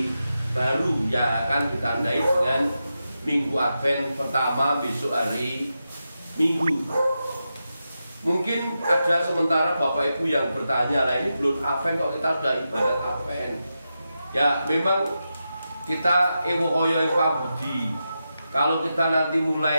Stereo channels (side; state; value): both; inverted; correlation -0.89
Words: baru yang akan ditandai dengan Minggu Advent pertama besok hari Minggu. Mungkin ada sementara Bapak Ibu yang bertanya, lah ini belum Advent kok kita sudah ibadat Advent. Ya memang kita ewo oyo yang pabudi. Kalau kita nanti